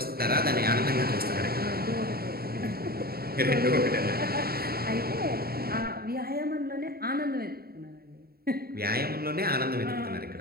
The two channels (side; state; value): left; late; 0.45 ms